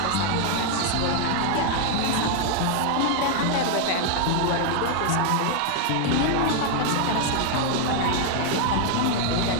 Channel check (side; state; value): both; different; correlation 0.00